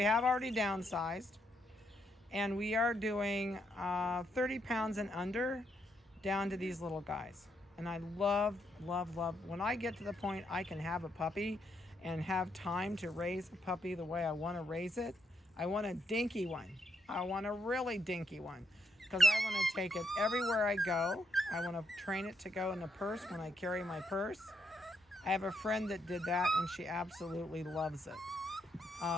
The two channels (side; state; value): both; normal; correlation 0.77